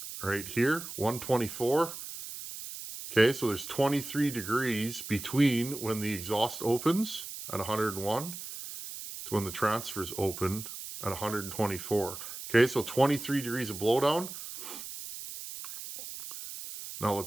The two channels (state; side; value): noise; right; hiss, 10 dB below the sound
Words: right here, 124. Okay, so there's 23 degrees between when the exhaust opens at 101 to when the transfers open at 124. Okay, so 23 degrees of blowdown. Now